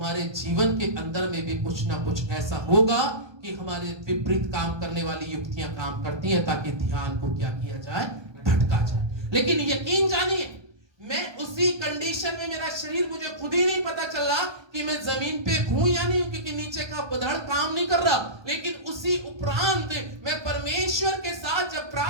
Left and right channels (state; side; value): late; left; 1.2 ms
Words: जीवन के अंदर में भी कुछ ना कुछ ऐसा होगा कि हमारे विपरीत काम करने वाली युक्तियां काम करती हैं, ताकि ध्यान को क्या किया जाए, भटका जाए। लेकिन यकीन जानिए, मैं उसी कंडीशन में, मेरा शरीर, मुझे खुद ही नहीं पता चल रहा कि मैं जमीन पे हूं या नहीं हूं, क्योंकि नीचे का बधड़ काम नहीं कर रहा। लेकिन उसी उपरांत मैं परमेश्वर के साथ जब